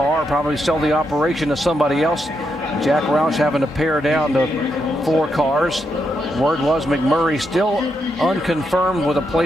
probably sell the operation to somebody else. Jack Roush having to pare down to 4 cars. Word was McMurray still unconfirmed with a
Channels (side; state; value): both; normal; correlation 0.82